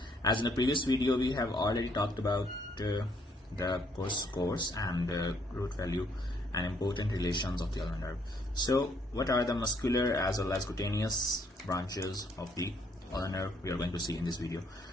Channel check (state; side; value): normal; both; correlation 0.68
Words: As in the previous video we have already talked about the course and the root value and important relations of the ulnar nerve. So what are the muscular as well as cutaneous branches of the ulnar nerve we are going to see in this video.